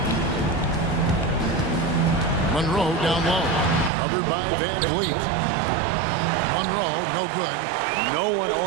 Monroe down low. Covered by VanVleet. Monroe, no good. No one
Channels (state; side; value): drops out; left; at 3.9 s